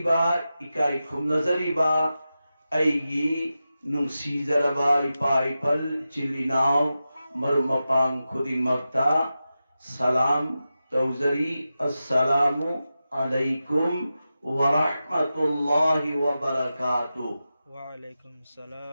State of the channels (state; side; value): inverted; both; correlation -0.92